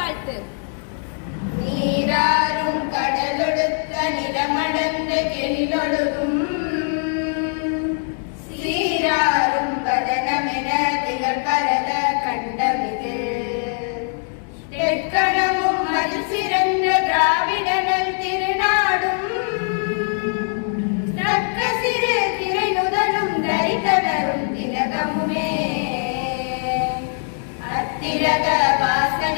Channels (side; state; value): right; silent; 57 dB below the other